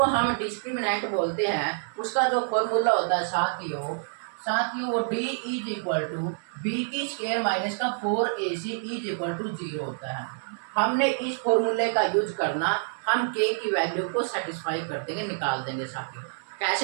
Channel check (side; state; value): left; silent; digital silence